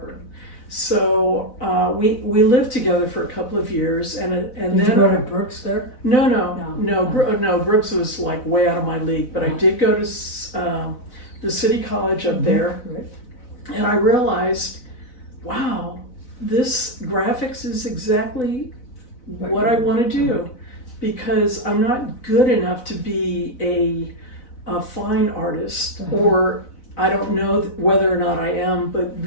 So we lived together for a couple of years, and Did then you go to Brooks there? No, Brooks was like way out of my league, but I did go to the City College up there, Right. and I realized, wow, this graphics is exactly what I want to do, because I'm not good enough to be a fine artist, or I don't know whether or not I am, but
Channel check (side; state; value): right; late; 4.0 ms